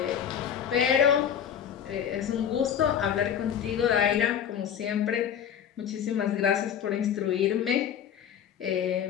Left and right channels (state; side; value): quieter; right; 8.9 dB